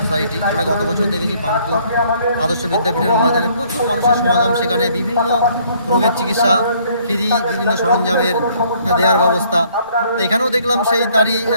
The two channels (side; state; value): both; inverted; correlation -0.63